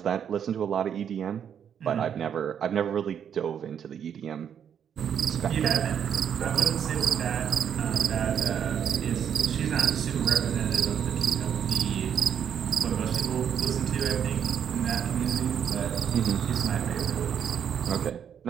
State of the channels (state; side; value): quieter; left; 8.4 dB